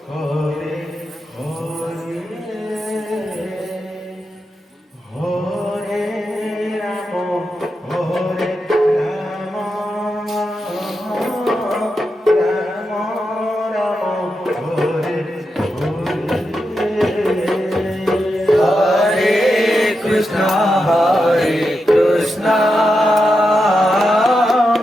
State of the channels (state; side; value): normal; both; correlation 0.87